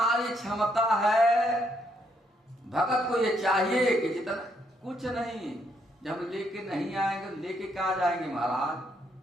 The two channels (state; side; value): normal; both; correlation 0.74